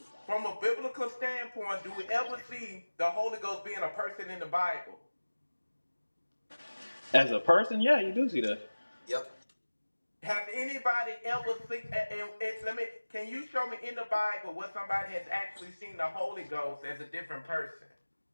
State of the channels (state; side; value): inverted; both; correlation -1.00